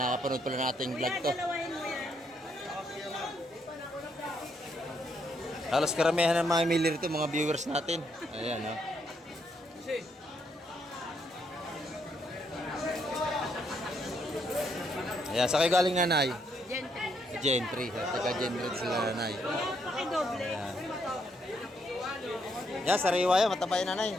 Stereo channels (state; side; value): normal; both; correlation 0.75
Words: pala nating vlog Kuya, to. dalawahin mo yan. Halos karamihan ng mga mili rito, mga viewers natin. Ayan, no? Ayan, sa kayo galing nanay? Gentry. Gentry. Taga Gentry sila nanay. Kuya, pakidoble. Ayan. Yan, sariwa yan. Mataba yan nanay.